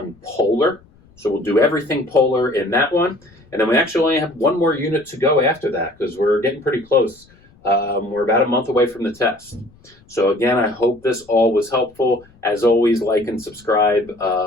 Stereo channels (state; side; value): noise; left; rumble, 29 dB below the sound